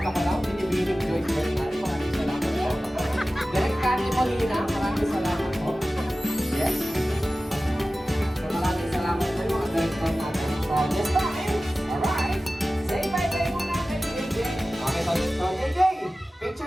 ko lang, binibining Joyce Bernal. Maraming salamat po. Direct Candy Molina, maraming salamat po. Yes. So, maraming salamat po yung mga director natin. So, this time, alright. Say bye-bye muna kay JJ. Okay, so JJ,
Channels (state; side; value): normal; both; correlation 0.96